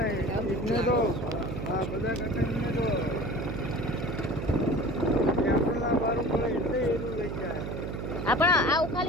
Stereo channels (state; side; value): noise; right; hum, 5 dB below the sound